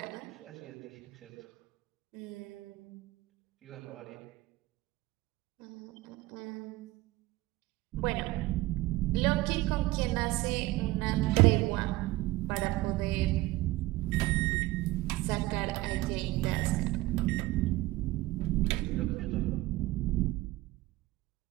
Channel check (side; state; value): left; quieter; 18.8 dB